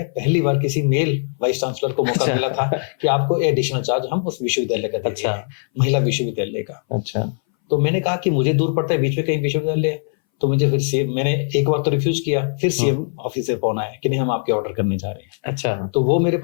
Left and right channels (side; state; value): right; silent; 62 dB below the other